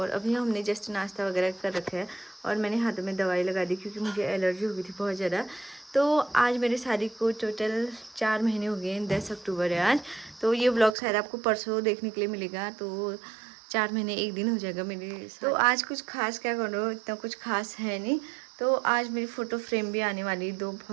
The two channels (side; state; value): left; drops out; at 11.0 s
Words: अभी हमने जस्ट नाश्ता वगैरह कर रखा है और मैंने हाथों में दवाई लगा दी क्योंकि मुझे एलर्जी हो गई थी बहुत ज़्यादा। तो आज मेरी शादी को टोटल 4 महीने हो गए, 10 अक्टूबर है आज। तो ये व्लॉग शायद आपको परसों देखने के लिए मिलेगा। तो 4 महीने 1 दिन हो जाएगा मेरी। तो आज कुछ खास क्या करो, इतना कुछ खास है नहीं। तो आज मेरी फ़ोटो फ्रेम भी आने वाली, 2